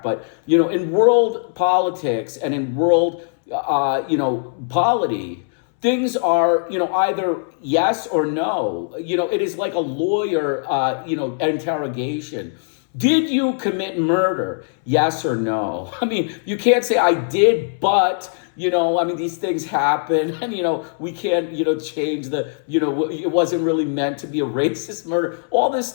But, in world politics and in world, polity, things are, either yes or no. It is like a lawyer, interrogation. Did you commit murder? Yes or no? You can't say I did, but, these things happen and, we can't, change the, it wasn't really meant to be a racist murder. All this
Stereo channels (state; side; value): silent; right; 65 dB below the other